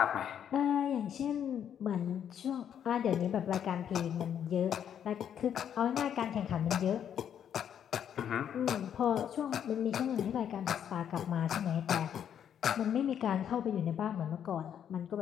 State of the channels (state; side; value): quieter; right; 9.0 dB